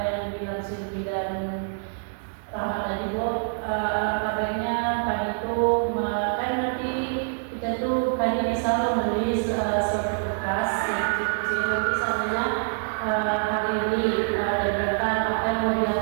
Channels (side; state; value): left; silent; digital silence